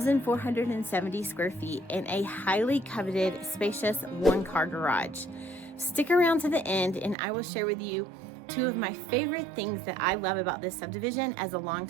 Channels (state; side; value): drops out; left; at 7.2 s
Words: square feet, and a highly coveted, spacious 1-car garage. Stick around to the end and I will share with you two of my favorite things that I love about this subdivision as a